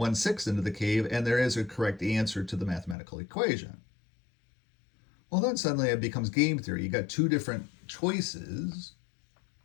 into the cave? And there is a correct answer to the mathematical equation. Well, then suddenly it becomes game theory. You got two different choices.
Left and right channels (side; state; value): right; drops out; at 3.0 s